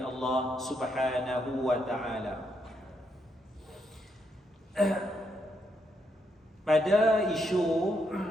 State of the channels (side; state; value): both; normal; correlation 0.78